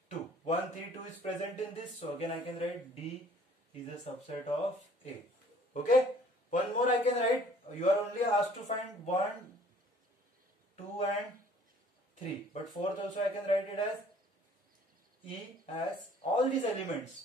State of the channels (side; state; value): both; normal; correlation 0.55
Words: 2. 1, 3, 2 is present in this. So again I can write D is a subset of A. Okay, one more I can write. You are only asked to find 1, 2 and 3. But fourth also I can write it as E as all these